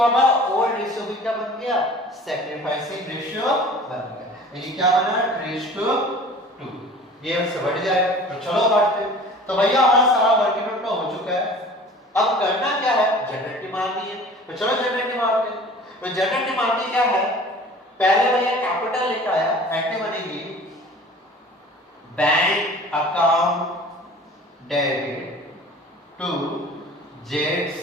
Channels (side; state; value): both; normal; correlation 0.44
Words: हमारा ओल्ड रेशियो भी क्या बन गया सैक्रिफाइसिंग रेशियो बन गया, यानी क्या बना 3:2 ये हमसे बढ़ जाएगा। तो चलो बांटते हैं। तो भैया हमारा सारा वर्किंग नोट हो चुका है, अब करना क्या है जनरेटिव मारनी है। तो चलो जनरेटिव मारते हैं। तो जनरेटिव मारनी क्या है पहले भैया कैपिटल लेकर आया एंटी बनेगी बैंक अकाउंट डेबिट टू जेड्स